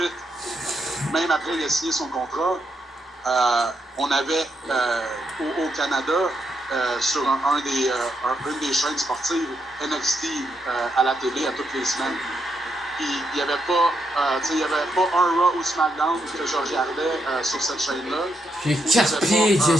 même après il a signé son contrat, on avait au Canada, sur une des chaînes sportives, NXT à la télé à toutes les semaines. Puis il n'y avait pas un Raw ou SmackDown que je regardais sur cette chaîne-là. J'ai 4 pieds, j'ai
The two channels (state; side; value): normal; both; correlation 0.80